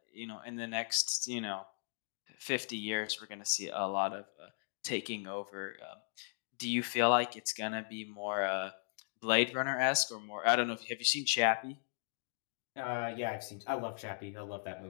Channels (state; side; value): silent; right; digital silence